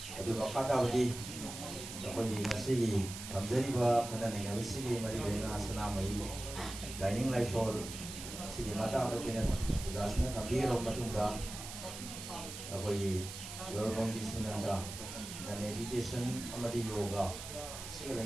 adu makata badi apni ngasi gi thamjari ba khana ne ngasi gi mari lena sana mai Laining Laison sigi mata ada pina jasna thambi ro matungda apoi yorong disunanda na meditation amadi yoga siga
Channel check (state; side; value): noise; right; hiss, 10 dB below the sound